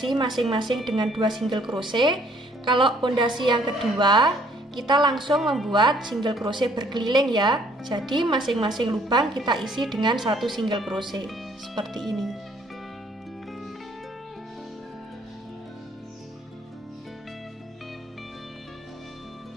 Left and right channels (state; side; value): normal; both; correlation 0.62